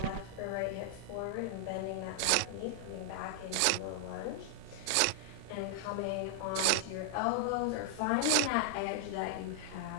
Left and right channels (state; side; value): different; both; correlation 0.00